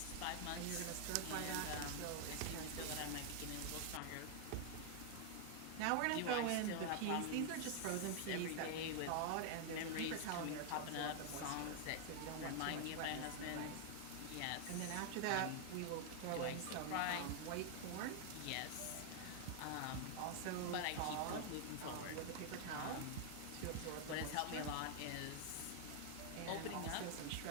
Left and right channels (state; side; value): different; both; correlation 0.00